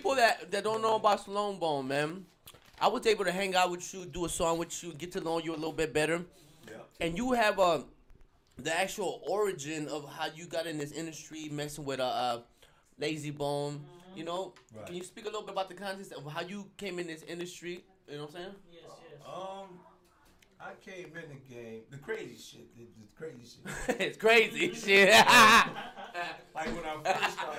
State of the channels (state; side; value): identical; both; correlation 1.00